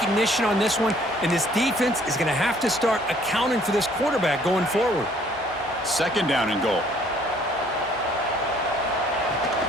on this one, and this defense is going to have to start accounting for this quarterback going forward. Second down and goal.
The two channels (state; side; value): normal; both; correlation 0.60